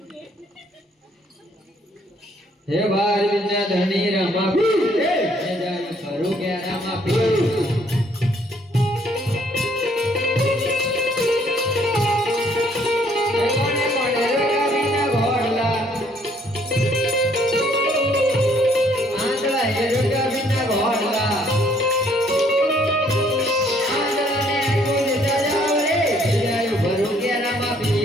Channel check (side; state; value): both; normal; correlation 0.64